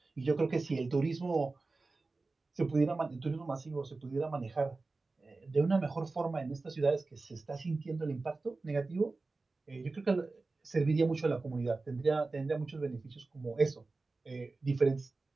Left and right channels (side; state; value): left; quieter; 3.6 dB